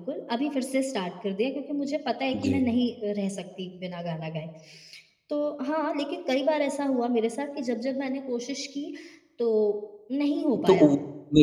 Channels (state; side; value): identical; both; correlation 1.00